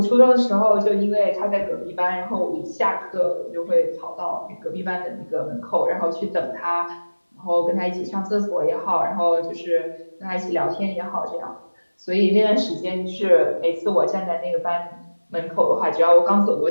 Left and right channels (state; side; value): inverted; both; correlation -1.00